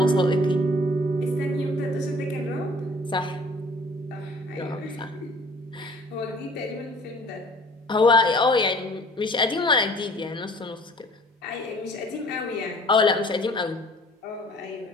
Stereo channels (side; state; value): both; normal; correlation 0.52